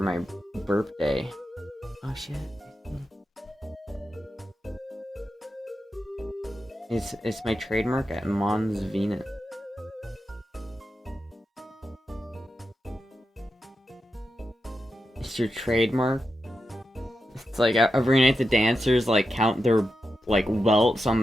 my birthday. Oh shit. It's my trademark at Mons Venus. It's your trademark? It's like every night the dancers like count their like welts on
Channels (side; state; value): both; normal; correlation 0.89